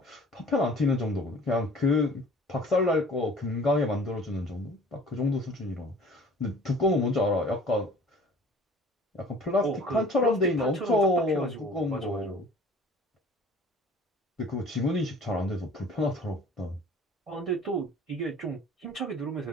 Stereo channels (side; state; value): both; normal; correlation 0.48